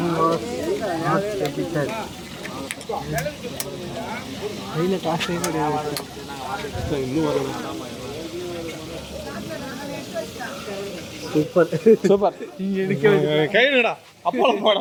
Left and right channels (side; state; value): both; identical; correlation 1.00